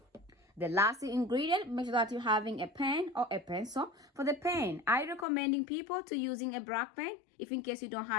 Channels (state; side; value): drops out; right; at 5.2 s